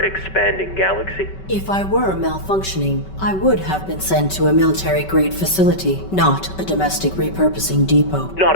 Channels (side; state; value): right; late; 5.2 ms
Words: galaxy. If I were malfunctioning, I would have been sent to a military-grade facility, not a domestic repurposing depot. Not